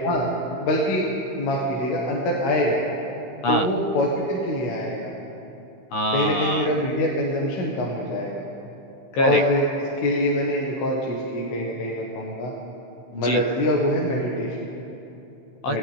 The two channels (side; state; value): right; late; 15 ms